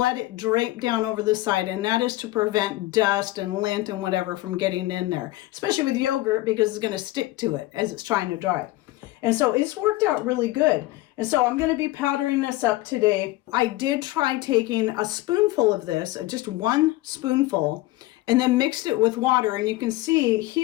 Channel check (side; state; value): right; quieter; 17.9 dB